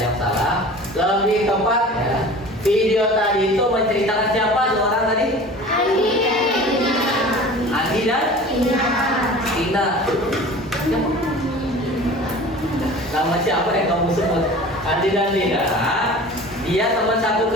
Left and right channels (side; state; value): both; normal; correlation 0.40